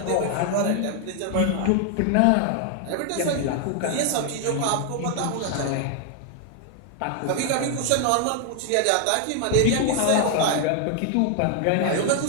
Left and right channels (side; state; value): both; different; correlation 0.00